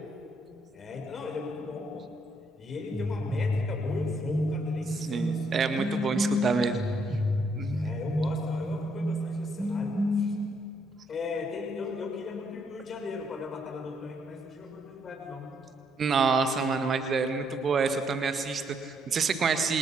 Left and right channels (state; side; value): normal; both; correlation 0.73